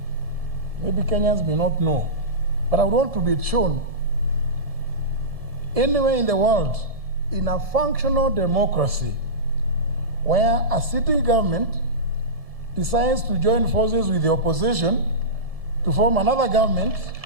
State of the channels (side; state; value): left; late; 1.7 ms